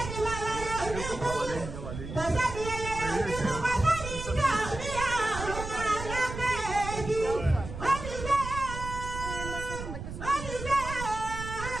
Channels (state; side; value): noise; right; rumble, 8 dB below the sound